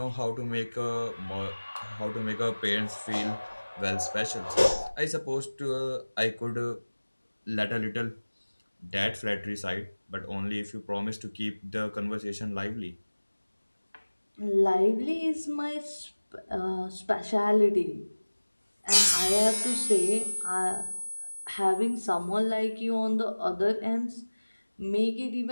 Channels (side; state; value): both; inverted; correlation -1.00